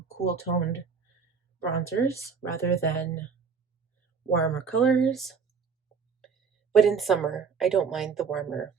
cool toned bronzers rather than warmer colors. But in summer, I don't mind the warmer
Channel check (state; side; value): quieter; left; 5.8 dB